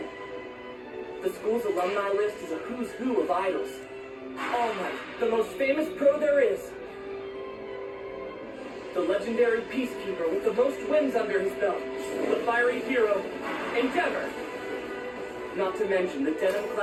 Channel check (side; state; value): both; identical; correlation 1.00